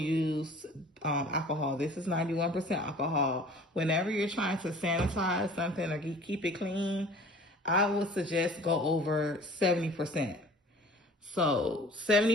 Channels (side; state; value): both; normal; correlation 0.47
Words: alcohol. This is 91% alcohol. Whenever you're trying to sanitize something or keep it clean, I would suggest go over 70%. So